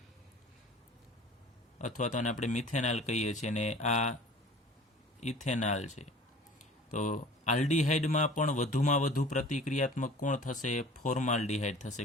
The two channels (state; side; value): normal; both; correlation 0.45